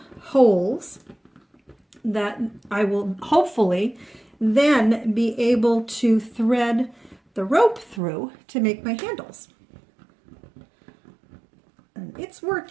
holes that I will hopefully then be able to thread the rope through to make my handles. And it's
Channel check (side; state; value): left; drops out; at 8.0 s